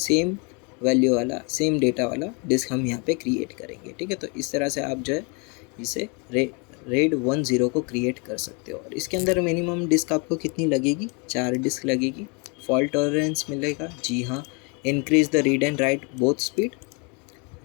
वैल्यू वाला, सेम डेटा वाला डिस्क हम यहाँ पे क्रिएट करेंगे, ठीक है। तो इस तरह से आप जो है इसे रेड 10 को क्रिएट कर सकते हो। और इसके अंदर मिनिमम डिस्क आपको कितनी लगेगी, 4 डिस्क लगेगी। फॉल्ट टॉलरेंस मिलेगा, जी हाँ। Increase the read and right both speed.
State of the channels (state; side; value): quieter; right; 33.0 dB